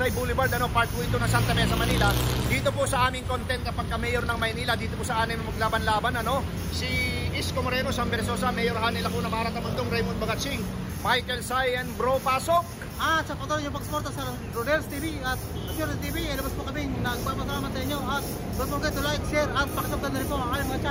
Boulevard, part po ito ng Santa Mesa, Manila. Dito po sa aming content kapag ka-mayor ng Maynila, dito po sa aming maglaban-laban, si Isko Moreno, Sam Versosa, Mayor Hanel Lacuna, Mara Tamundong, Raymond Bagatsing, Michael Sayan, Bro Pasok. At sa patuloy yung pagsuporta sa Rodales TV at Shorty TV, labas po kami nagpapasalamat sa inyo. At don't forget to like, share at pakisubscribe na rin po ang aming mga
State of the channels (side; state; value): both; identical; correlation 1.00